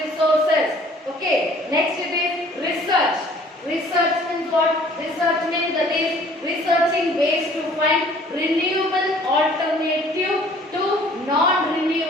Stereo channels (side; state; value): both; normal; correlation 0.54